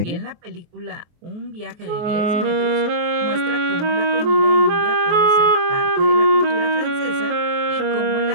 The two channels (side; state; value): left; late; 23 ms